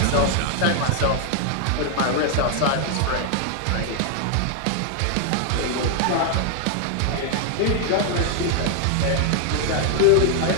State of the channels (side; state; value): both; different; correlation 0.00